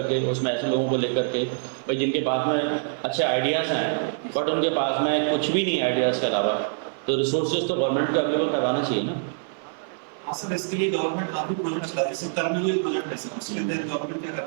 उसमें ऐसे लोगों को लेकर के, भाई जिनके पास में अच्छे आइडियाज़ हैं बट उनके पास में कुछ भी नहीं आइडियाज़ के अलावा, तो रिसोर्सेज तो गवर्नमेंट को अवेलेबल करवाना चाहिए ना। हाँ सर, इसके लिए गवर्नमेंट काफी प्रोजेक्ट्स ला रही है। कर्मयोगी प्रोजेक्ट है सर, उसके तहत गवर्नमेंट क्या कर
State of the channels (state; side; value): silent; left; 58 dB below the other